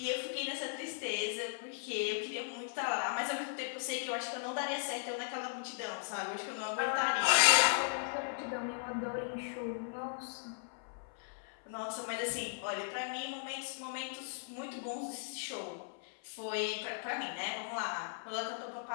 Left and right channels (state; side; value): silent; right; 53 dB below the other